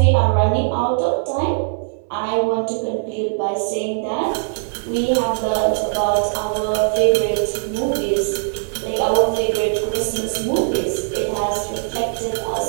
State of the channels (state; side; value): silent; left; digital silence